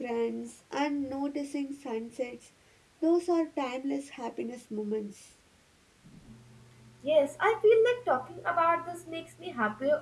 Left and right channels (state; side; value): identical; both; correlation 1.00